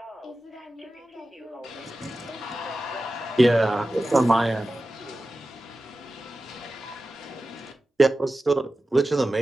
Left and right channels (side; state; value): both; normal; correlation 0.94